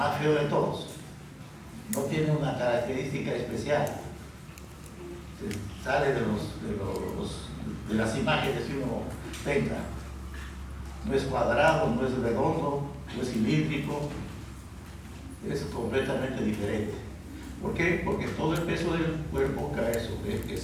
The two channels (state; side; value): identical; both; correlation 1.00